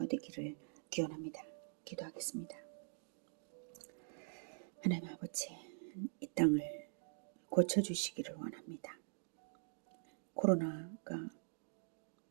되기를 기원합니다. 기도하겠습니다. 하나님 아버지, 이 땅을 고쳐주시기를 원합니다. 코로나가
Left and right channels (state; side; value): silent; left; digital silence